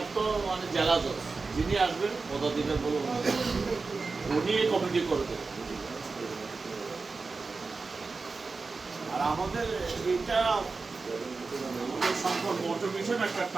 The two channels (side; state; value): left; quieter; 4.2 dB